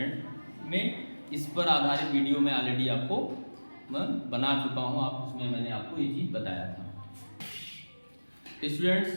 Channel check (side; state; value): both; inverted; correlation -1.00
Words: में। इस पर आधारित वीडियो में ऑलरेडी आपको मैं बना चुका हूँ, आप उसमें मैंने आपको ये चीज़ बताया था। स्टूडेंट्स,